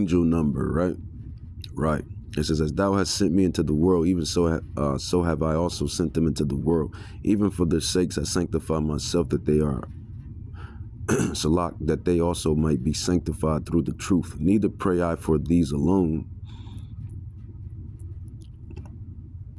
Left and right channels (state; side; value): identical; both; correlation 1.00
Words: number, right? Right. It says, as thou hast sent me into the world, even so have I also sent them into the world. Even for their sakes I sanctify myself, that they are Salak, that they also might be sanctified through the truth. Neither pray I for these alone,